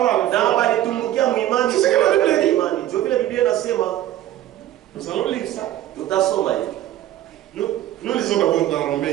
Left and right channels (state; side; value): quieter; left; 13.2 dB